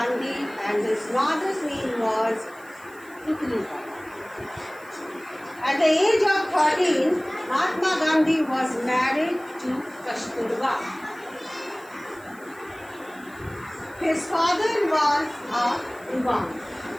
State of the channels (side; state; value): right; noise; hiss, 25 dB below the sound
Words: and his mother's name was Putlika. At the age of 13, Mahatma Gandhi was married to Kasturba. His father was a Diwan